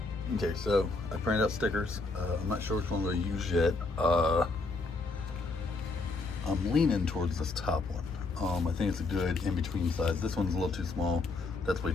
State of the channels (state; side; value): quieter; right; 3.5 dB